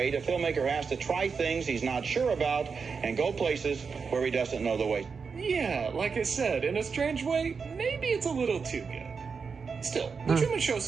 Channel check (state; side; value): quieter; left; 5.4 dB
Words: a filmmaker has to try things he's not sure about and go places where he doesn't know the way. Yeah, like I said, in a strange way, maybe it's a little too good. Still, The Truman Show